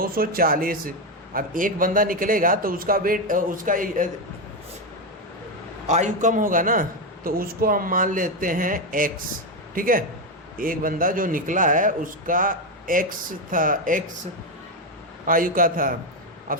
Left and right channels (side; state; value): both; normal; correlation 0.08